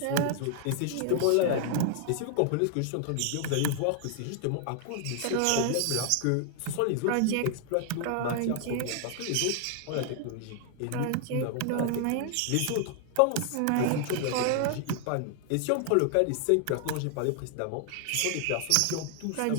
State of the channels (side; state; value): both; different; correlation 0.00